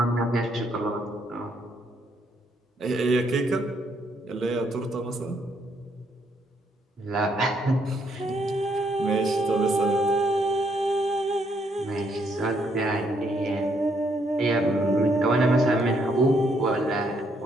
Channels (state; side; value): normal; both; correlation 0.72